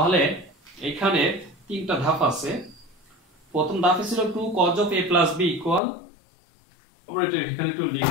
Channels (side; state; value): right; drops out; at 5.8 s